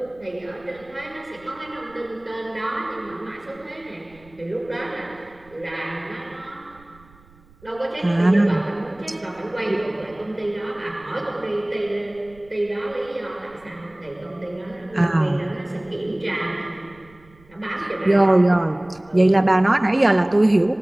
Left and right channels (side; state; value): right; noise; rumble, 27 dB below the sound